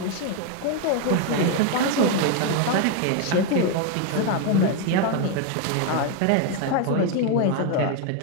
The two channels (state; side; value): different; both; correlation 0.01